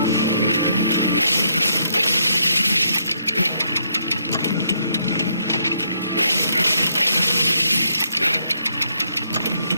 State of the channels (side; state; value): both; inverted; correlation -0.74